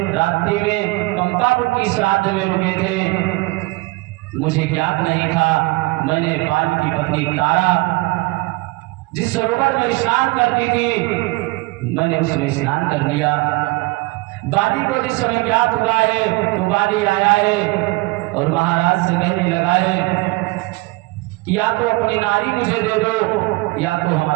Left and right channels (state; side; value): quieter; left; 23.2 dB